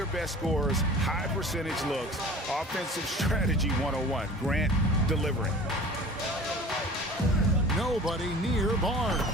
best scores, high percentage looks, offensive strategy 101. Grant delivering. Nobody near Barnes.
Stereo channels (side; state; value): both; normal; correlation 0.42